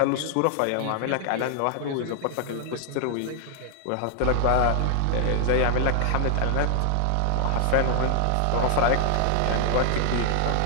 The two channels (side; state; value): both; different; correlation 0.00